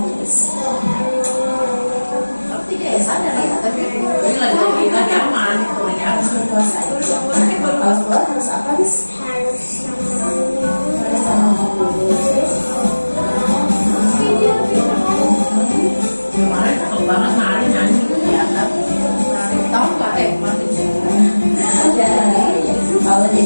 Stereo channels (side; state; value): both; inverted; correlation -1.00